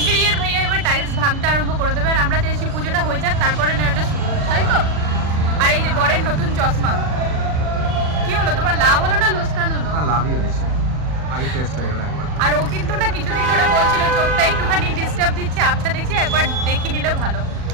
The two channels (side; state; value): left; late; 40 ms